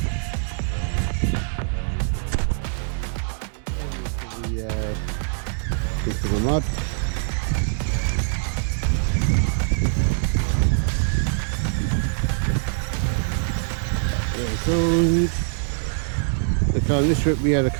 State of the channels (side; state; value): left; silent; digital silence